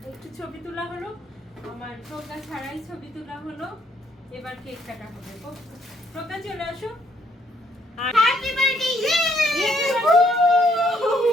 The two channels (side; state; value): both; normal; correlation 0.69